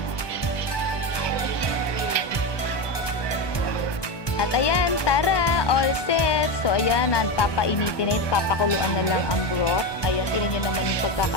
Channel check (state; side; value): late; right; 1.2 ms